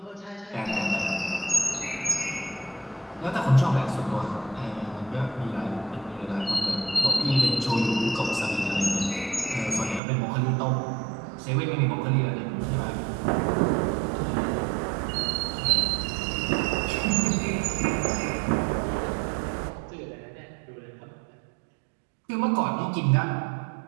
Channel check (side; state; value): left; drops out; at 10.0 s